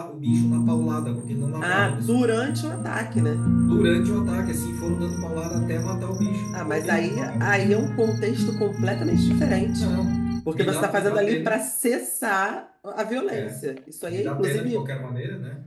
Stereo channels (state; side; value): identical; both; correlation 1.00